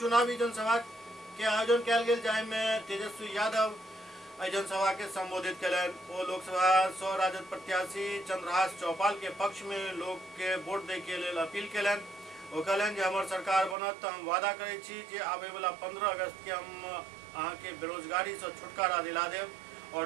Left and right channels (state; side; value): drops out; left; at 13.8 s